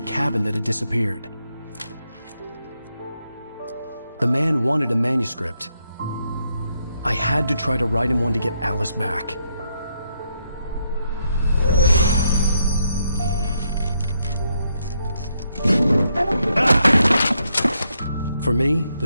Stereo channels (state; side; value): inverted; both; correlation -0.78